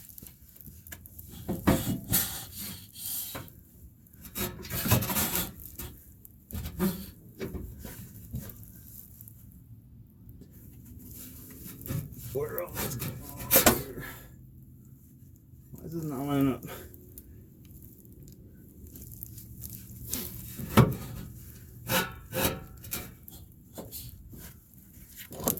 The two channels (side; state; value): both; identical; correlation 1.00